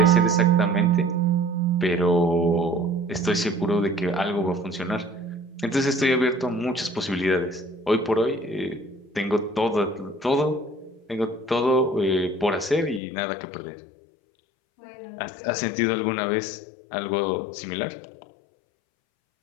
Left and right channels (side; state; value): right; drops out; at 13.0 s